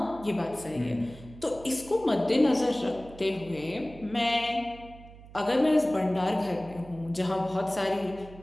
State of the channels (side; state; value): right; noise; hum, 18 dB below the sound